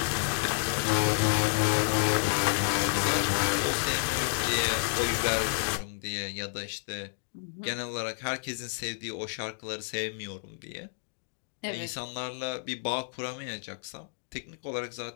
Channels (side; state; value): right; silent; digital silence